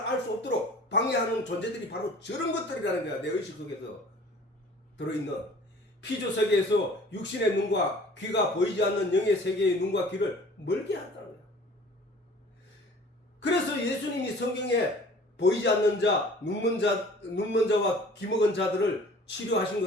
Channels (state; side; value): normal; both; correlation 0.48